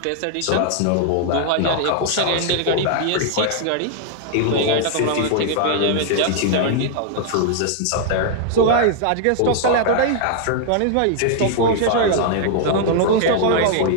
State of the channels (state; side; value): different; both; correlation 0.00